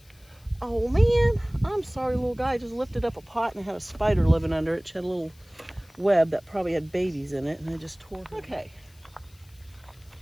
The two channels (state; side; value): noise; left; hiss, 29 dB below the sound